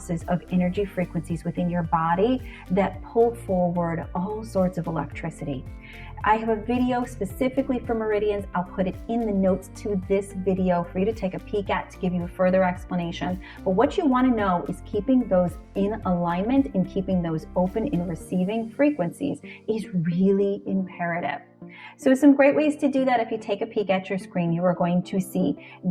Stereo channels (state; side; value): identical; both; correlation 1.00